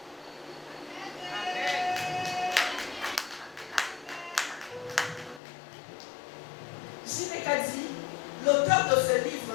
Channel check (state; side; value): drops out; right; at 5.4 s